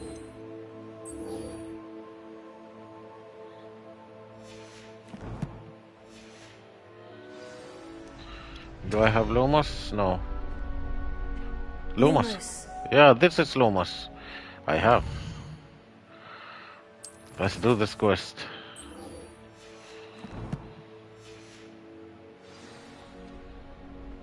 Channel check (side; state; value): both; identical; correlation 1.00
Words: Do I have Lumos? No. Lumos. Yeah, this is Lumos. I have. Let's do this quest.